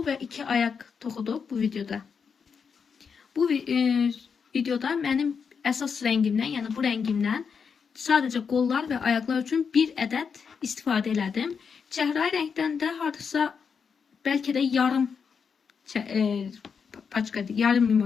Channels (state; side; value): quieter; right; 6.1 dB